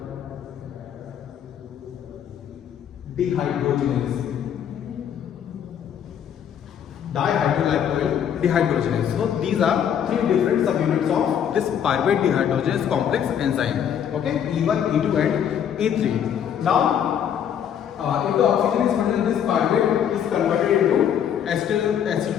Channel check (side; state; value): right; quieter; 8.9 dB